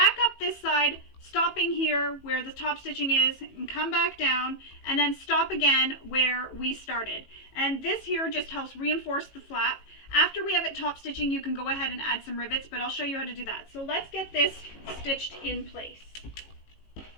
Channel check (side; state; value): right; late; 18 ms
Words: up this side, stopping here where the top stitching is, and come back down, and then stop again where we started. And this here just helps reinforce the flap. After we have it top stitching, you can go ahead and add some rivets, but I'll show you how to do that. So let's get this stitched in place.